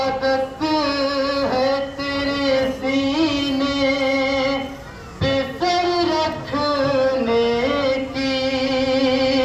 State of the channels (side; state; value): both; identical; correlation 1.00